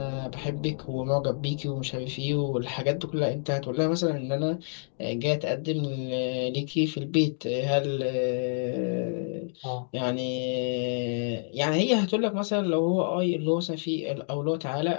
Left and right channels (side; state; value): right; silent; digital silence